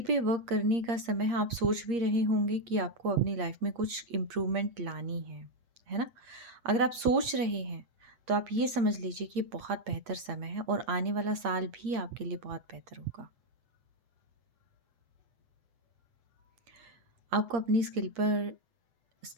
पे वर्क करने का समय है, आप सोच भी रहे होंगे कि आपको अपनी लाइफ़ में कुछ इम्प्रूवमेंट लानी है ना? अगर आप सोच रहे हैं, तो आप ये समझ लीजिए कि ये बहुत बेहतर समय है और आने वाला साल भी आपके लिए बहुत बेहतर होगा। आपको अपनी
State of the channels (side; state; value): left; late; 8.6 ms